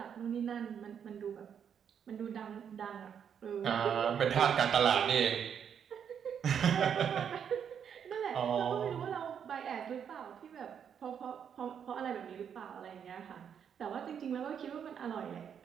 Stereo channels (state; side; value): quieter; left; 8.0 dB